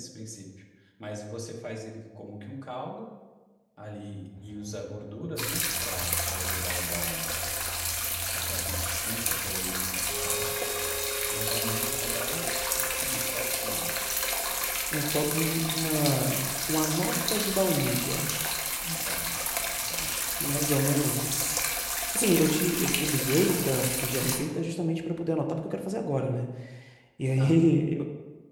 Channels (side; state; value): both; identical; correlation 1.00